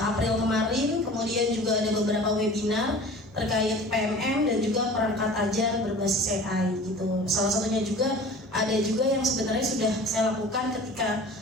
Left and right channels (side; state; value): both; normal; correlation 0.42